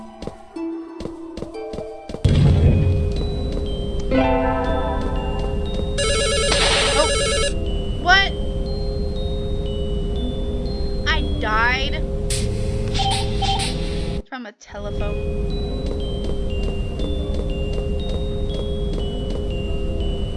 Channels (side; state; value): both; identical; correlation 1.00